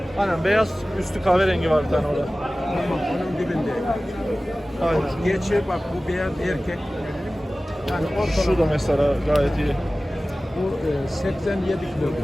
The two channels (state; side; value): normal; both; correlation 0.97